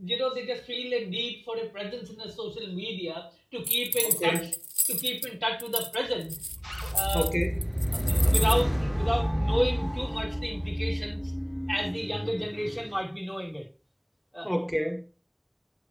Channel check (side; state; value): both; identical; correlation 1.00